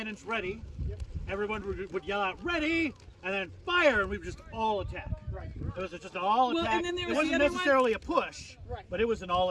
ready. Yep. Everyone would yell out ready, and then fire, and we would just all attack. Right. It was just an all attack. and then there It was wasn't the other necessarily a push, Right. but it was an all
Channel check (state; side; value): identical; both; correlation 1.00